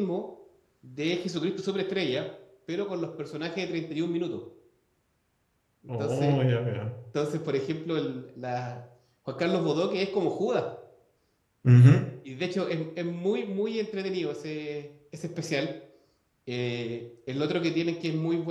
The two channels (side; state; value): both; identical; correlation 1.00